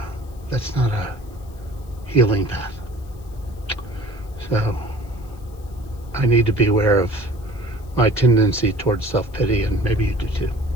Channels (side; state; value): left; noise; hiss, 28 dB below the sound